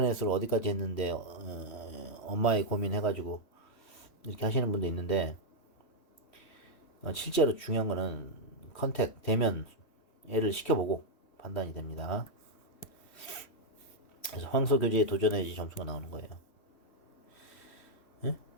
어디까지 했는데 엄마의 고민 해가지고 이렇게 하시는 분도 있는데 실제로 중요한 거는 컨택 대면 애를 시켜보고 판단이 됩니다. 그래서 황소 교재에 도전해야지 점수가 나오는 거예요.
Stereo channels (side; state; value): right; late; 3.1 ms